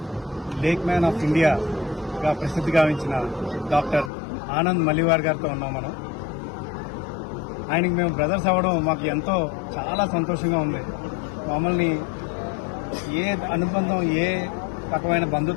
Lake man of India గా ప్రసిద్ధి గావించిన doctor Anand మల్లివార్ గారితో ఉన్నాం మనం. ఆయనకి మేము brothers అవ్వడం మాకు ఎంతో చాలా సంతోషంగా ఉంది. మమ్మల్ని ఏ అనుబంధం, ఏ రకమైన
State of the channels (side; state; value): right; drops out; at 4.1 s